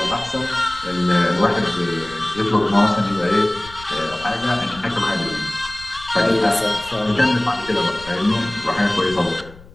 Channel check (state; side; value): noise; left; rumble, 19 dB below the sound